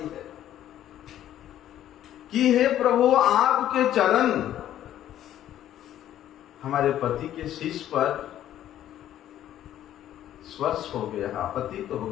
कि हे प्रभु, आपके चरण हमारे पति के शीश पर स्पर्श हो गया, पतित हो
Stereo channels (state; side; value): quieter; right; 11.8 dB